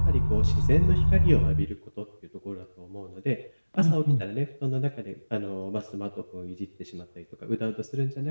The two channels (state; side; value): inverted; both; correlation -1.00